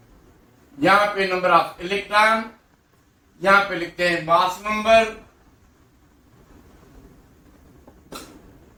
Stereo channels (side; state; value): both; identical; correlation 1.00